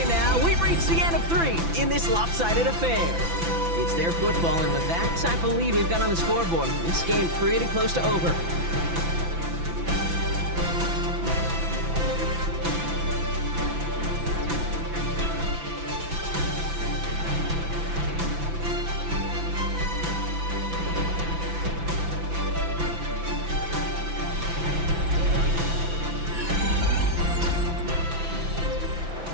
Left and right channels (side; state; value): left; late; 5.9 ms